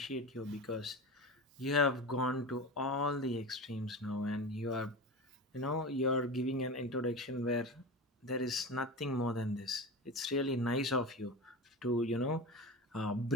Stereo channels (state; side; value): normal; both; correlation 0.27